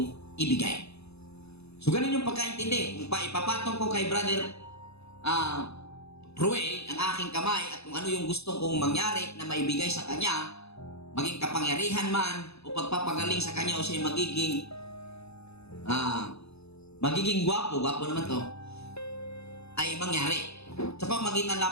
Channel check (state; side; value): late; right; 0.79 ms